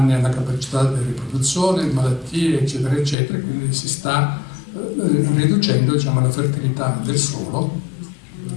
alla capacità di riproduzione, malattie, eccetera, eccetera, quindi si sta riducendo, diciamo, la fertilità del suolo.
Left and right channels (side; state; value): right; drops out; at 3.2 s